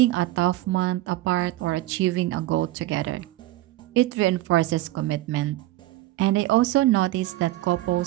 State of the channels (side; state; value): left; quieter; 16.7 dB